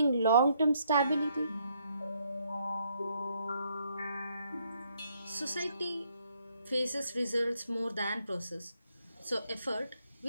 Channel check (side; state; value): both; inverted; correlation -0.72